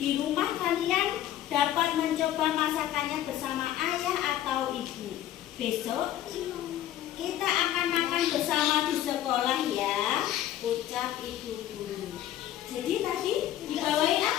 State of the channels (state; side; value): quieter; right; 12.4 dB